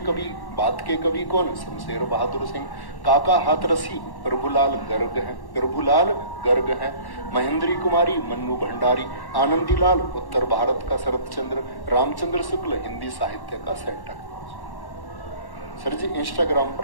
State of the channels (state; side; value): late; right; 1.1 ms